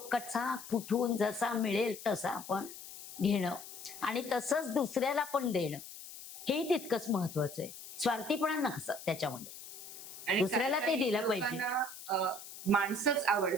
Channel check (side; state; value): left; noise; hiss, 13 dB below the sound